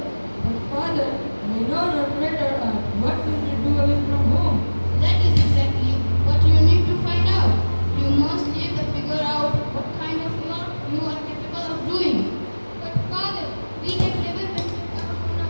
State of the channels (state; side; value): inverted; both; correlation -1.00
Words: But father, we know not better art. What will we do away from home? That is exactly what you need to find out. You must live to figure out what kind of work you are capable of doing. But father, we have never ventured out on